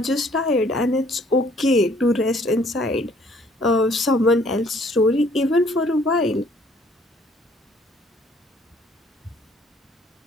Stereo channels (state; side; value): normal; both; correlation 0.61